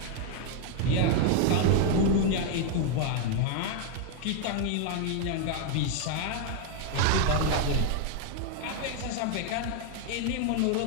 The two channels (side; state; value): both; different; correlation 0.00